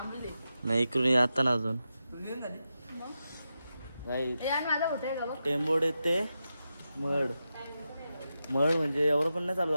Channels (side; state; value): both; inverted; correlation -0.89